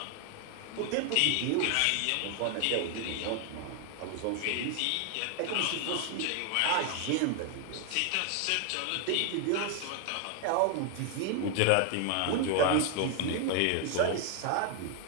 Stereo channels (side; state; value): both; different; correlation 0.01